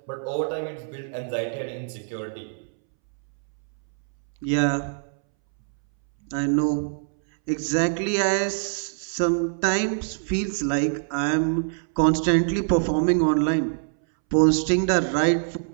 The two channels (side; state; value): left; silent; 62 dB below the other